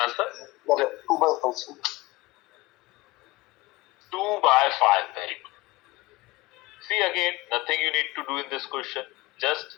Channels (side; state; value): right; quieter; 21.1 dB